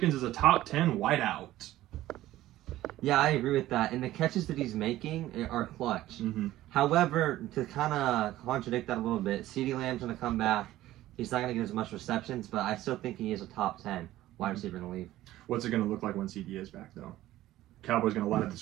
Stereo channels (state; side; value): quieter; left; 15.0 dB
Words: is a top 10 wideout. Yeah, I agree with that. And the catches that he's making are clutch. Mm-hmm. However, to kind of contradict that a little bit, CeeDee Lamb's going to come back. He's not going to get as much receptions, but I still think he is a top 10 wide receiver in the league. What's it going to look like when CD is back, though? Cowboys going to light up the